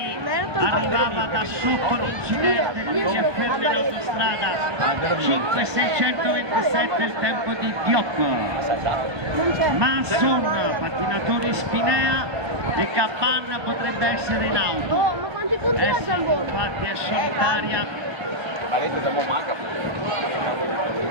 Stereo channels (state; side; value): late; left; 1.2 ms